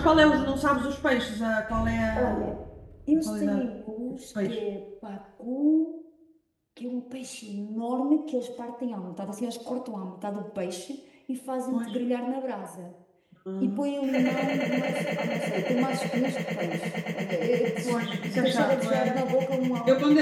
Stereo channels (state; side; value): identical; both; correlation 1.00